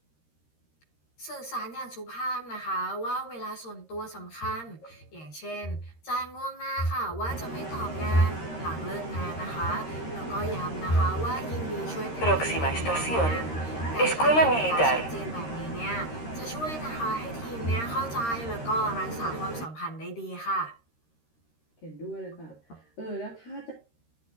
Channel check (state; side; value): late; right; 13 ms